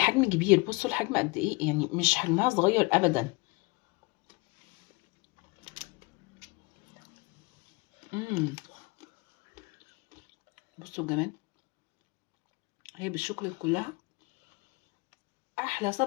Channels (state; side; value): quieter; right; 27.0 dB